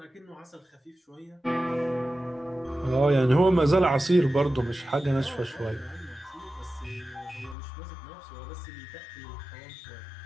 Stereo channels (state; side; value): drops out; right; at 7.6 s